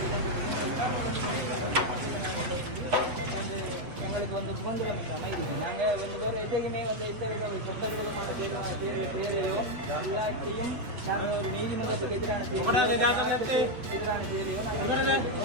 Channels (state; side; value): late; left; 8.3 ms